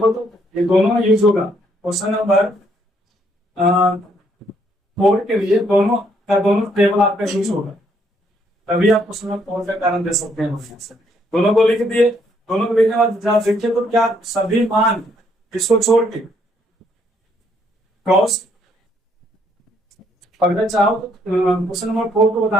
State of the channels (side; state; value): both; normal; correlation 0.69